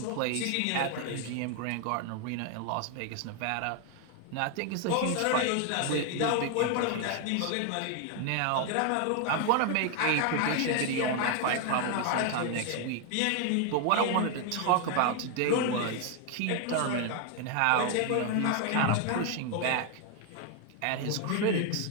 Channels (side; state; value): both; different; correlation 0.01